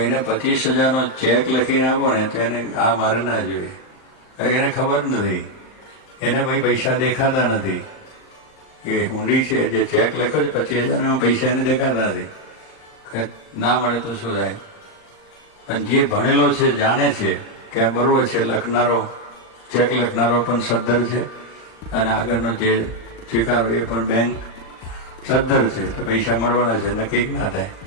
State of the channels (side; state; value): right; late; 39 ms